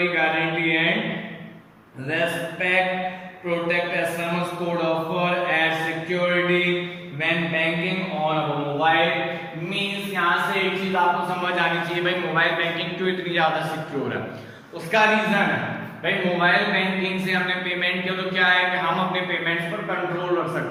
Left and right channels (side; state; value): both; identical; correlation 1.00